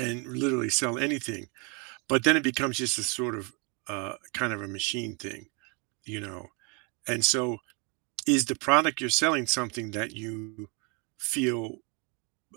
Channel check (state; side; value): quieter; left; 32.9 dB